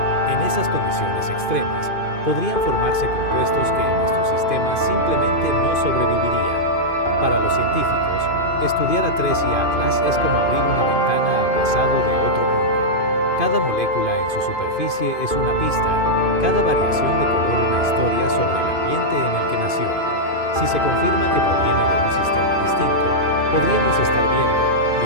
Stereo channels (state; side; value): late; right; 2.5 ms